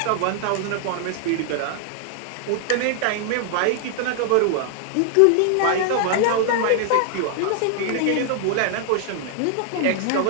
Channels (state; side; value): different; both; correlation 0.00